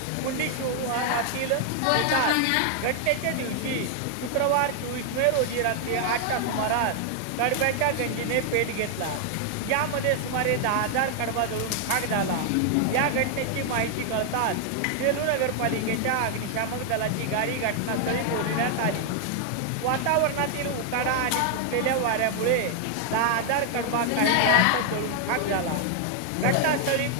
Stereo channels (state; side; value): different; both; correlation 0.00